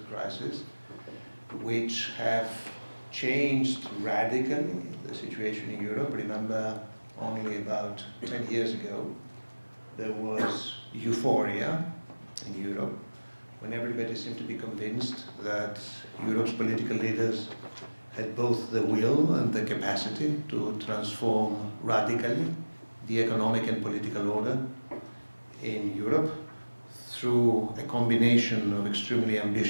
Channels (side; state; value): both; inverted; correlation -1.00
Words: crises, which have changed radically the situation in Europe. Remember, only about 10 years ago, there was euphoria in Europe when everybody seemed to be convinced that Europe's political leaders had both the will and the capacity to transform radically the economic and political order in Europe through a combination of extremely